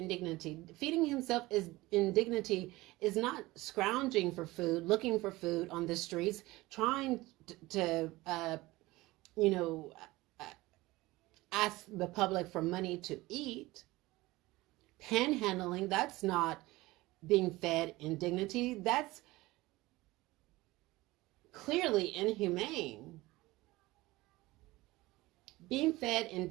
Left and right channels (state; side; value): quieter; left; 19.7 dB